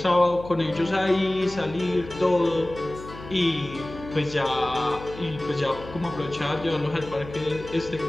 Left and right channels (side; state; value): left; noise; hum, 14 dB below the sound